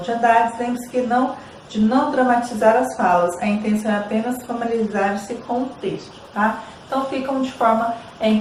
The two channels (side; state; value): both; identical; correlation 1.00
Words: de Andrade. Lembre-se que não de não dramatizar as falas, a intenção é apenas familiarizar-se com o texto, tá? Então ficam de forma